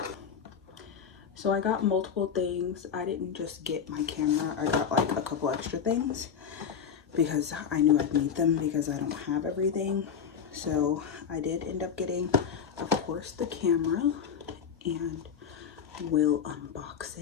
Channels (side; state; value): right; quieter; 7.2 dB